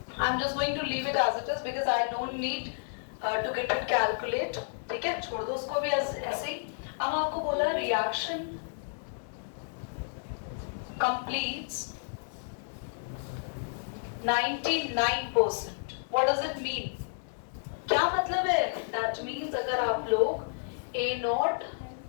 I'm just going to leave it as it is because I don't need to get it calculate। ठीक है, छोड़ दो उसको भी ऐसे ही। अब आपको बोला reaction completes 99%। What does it mean? क्या मतलब है? That means अगर आप लोग A0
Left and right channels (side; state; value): right; silent; digital silence